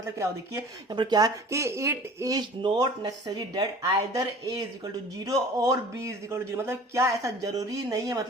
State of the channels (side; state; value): both; normal; correlation 0.45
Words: क्या हो, देखिए यहाँ पर क्या कि it is not necessary that either A is equal to 0 और बी इज इक्वल टू 0, मतलब क्या ऐसा जरूरी नहीं है?